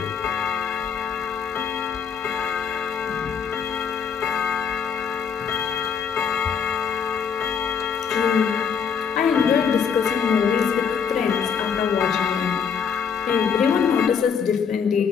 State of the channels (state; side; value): quieter; right; 6.8 dB